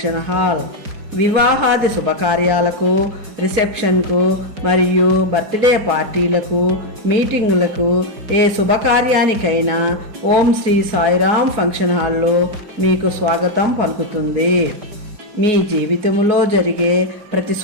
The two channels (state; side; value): late; left; 5.1 ms